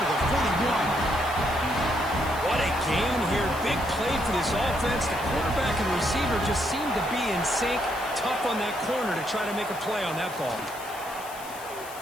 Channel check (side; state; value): left; noise; hiss, 16 dB below the sound